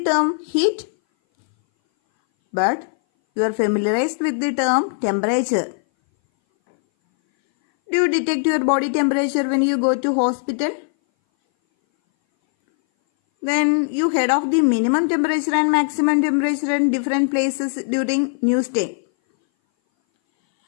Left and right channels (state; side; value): silent; right; 60 dB below the other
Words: term heat? But you are familiarized with the term temperature. Do you detect your body temperature when you go to hospital? Then you heard of the minimum temperature and maximum temperature in different places during news day.